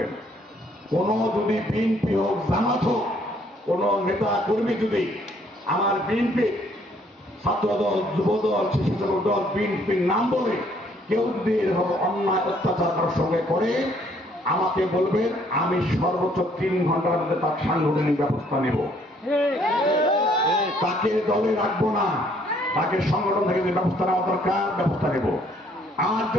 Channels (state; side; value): normal; both; correlation 0.64